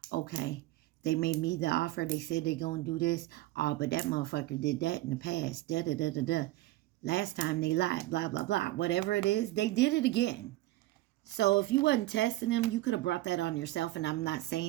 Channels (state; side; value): quieter; left; 17.1 dB